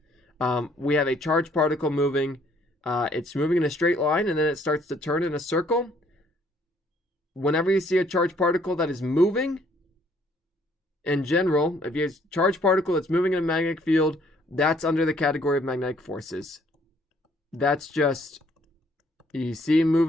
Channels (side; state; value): both; normal; correlation 0.64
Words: we have a charged particle moving. It's moving in a straight line, and then it starts to turn in a circle. Whenever you see a charged particle that is moving, in general, if you have a charged particle that's moving in a magnetic field, that's under the category of magnetic forces. That's just, you see